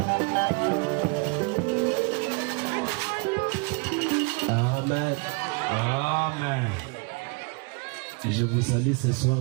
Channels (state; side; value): quieter; left; 31.6 dB